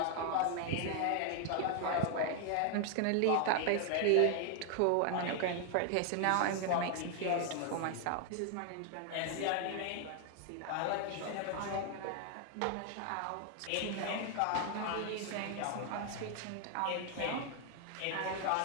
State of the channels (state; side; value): different; both; correlation 0.00